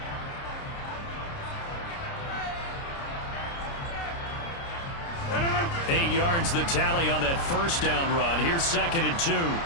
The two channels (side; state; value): right; late; 29 ms